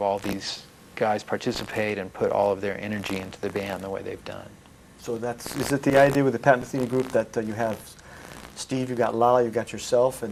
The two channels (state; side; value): identical; both; correlation 1.00